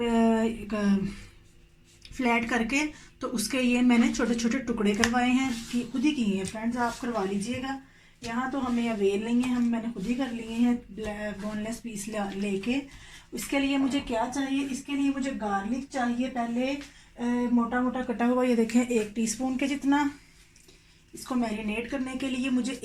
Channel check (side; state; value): both; identical; correlation 1.00